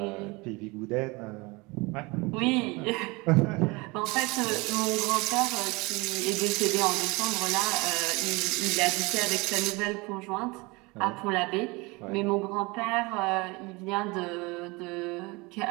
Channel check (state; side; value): quieter; left; 25.3 dB